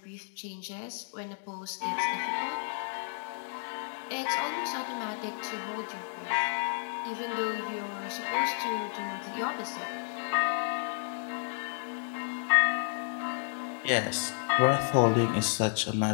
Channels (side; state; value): right; silent; digital silence